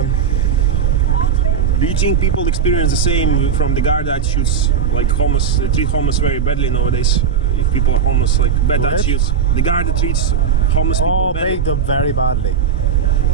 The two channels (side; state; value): left; quieter; 7.2 dB